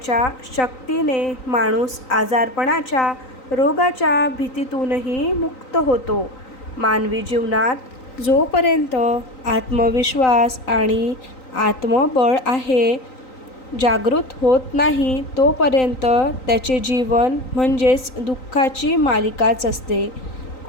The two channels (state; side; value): late; right; 3.9 ms